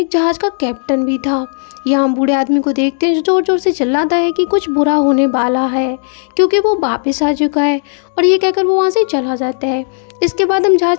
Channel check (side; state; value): right; silent; 64 dB below the other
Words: जहाज का कैप्टन भी था। यहाँ बूढ़े आदमी को देखते हैं जो जोर जोर से चिल्लाता है कि कुछ बुरा होने वाला है, क्योंकि वो वापस आ चुका है। और ये कहकर वो वहाँ से चला जाता है। इसके बाद हम